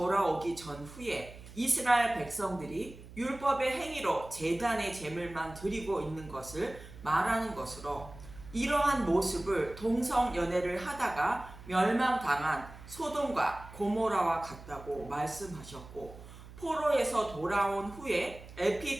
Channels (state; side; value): noise; right; hum, 17 dB below the sound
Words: 전후에 이스라엘 백성들이 율법의 행위로 제단의 제물만 드리고 있는 것을 말하는 것으로, 이러한 모습을 동성연애를 하다가 멸망당한 소돔과 고모라와 같다고 말씀하셨고, 포로에서 돌아온 후에